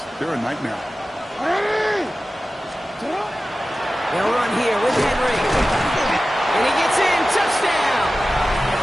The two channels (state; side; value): normal; both; correlation 0.95